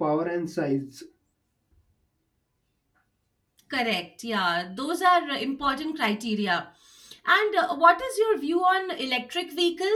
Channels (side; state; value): both; identical; correlation 1.00